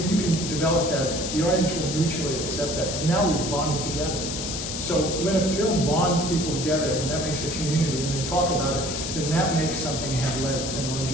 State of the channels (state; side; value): noise; left; hiss, 5 dB below the sound